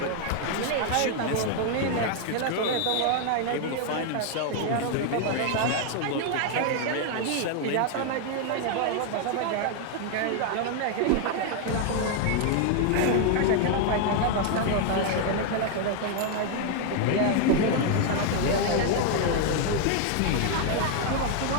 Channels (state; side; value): different; both; correlation 0.00